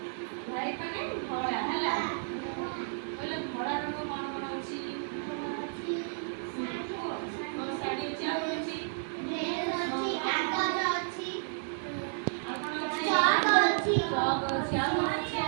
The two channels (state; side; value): silent; left; 55 dB below the other